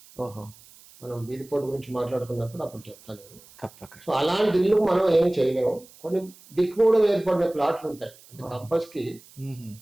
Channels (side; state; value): right; noise; hiss, 24 dB below the sound